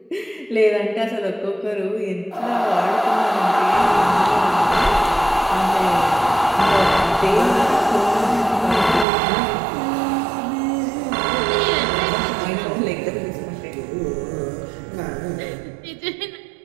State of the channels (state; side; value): drops out; left; at 9.1 s